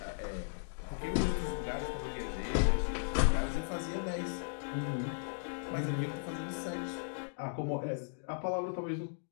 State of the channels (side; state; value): right; silent; digital silence